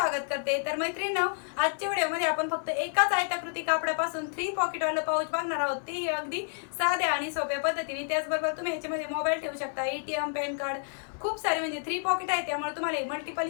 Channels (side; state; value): right; silent; digital silence